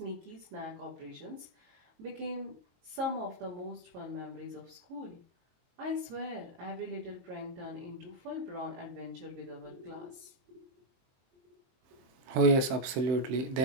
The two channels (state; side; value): late; left; 23 ms